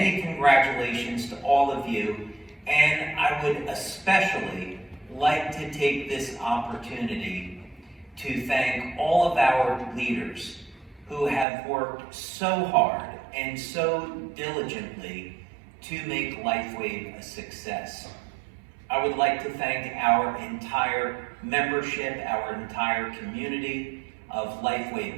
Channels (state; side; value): drops out; left; at 11.5 s